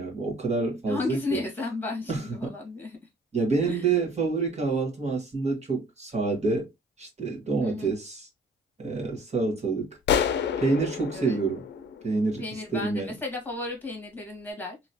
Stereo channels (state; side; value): normal; both; correlation 0.53